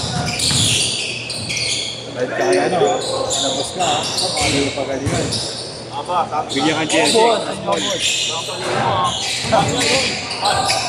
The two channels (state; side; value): identical; both; correlation 1.00